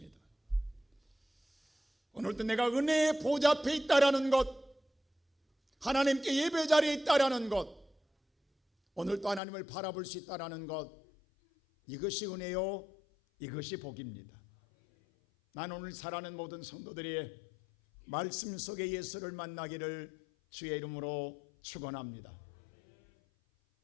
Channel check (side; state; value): right; drops out; at 9.4 s